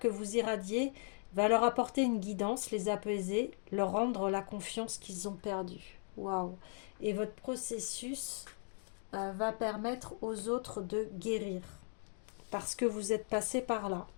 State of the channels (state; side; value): silent; right; 53 dB below the other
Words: vous irradiez va leur apporter une guidance, les apaiser, leur rendre la confiance qu'ils ont perdue. Waouh! Et votre processus va permettre aux autres de guérir parce que vous êtes passé par là